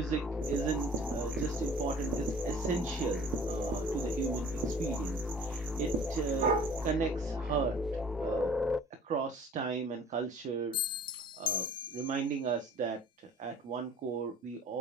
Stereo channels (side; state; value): both; normal; correlation 0.49